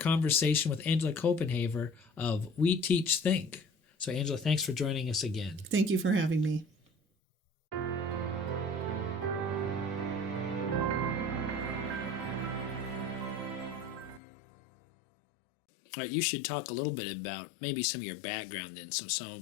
with Angela Copenhaver of We Teach Think. So Angela, thanks for joining us again. Thank you for having me. All right, you should talk a little bit about maybe some of your background then, so some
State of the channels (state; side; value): drops out; right; at 14.2 s